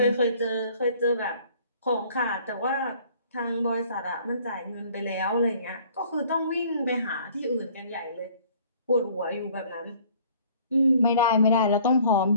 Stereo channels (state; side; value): inverted; both; correlation -0.55